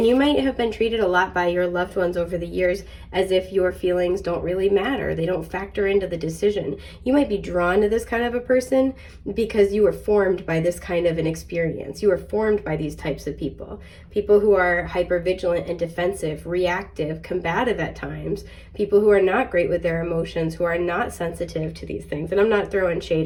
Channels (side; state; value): both; identical; correlation 1.00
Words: you might have been treated a lot by your loved ones over the years as if your feelings don't really matter. They don't factor into the decision. You might be drawn to this kind of a person because you were formed by this kind of an experience. You were formed by these types of people. People who are hypervigilant and defensive, reactive, combative at times. People who are not great with their emotions, who are not sensitive to these things. And I'm not throwing